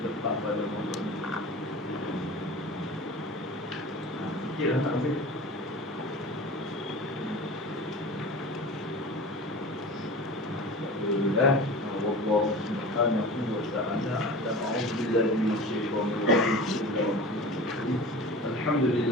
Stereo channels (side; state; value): both; normal; correlation 0.35